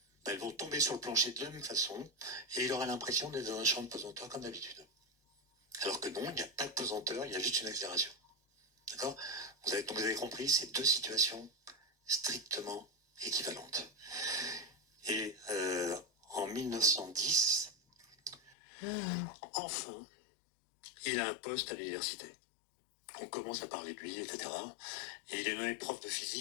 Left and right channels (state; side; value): drops out; right; at 18.6 s